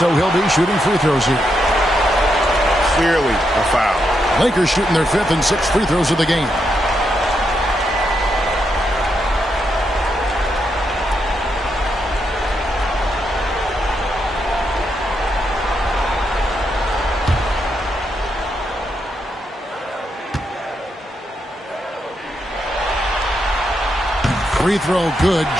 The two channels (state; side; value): normal; both; correlation 0.81